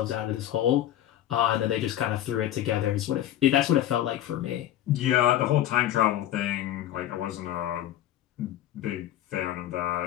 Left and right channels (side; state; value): right; quieter; 12.5 dB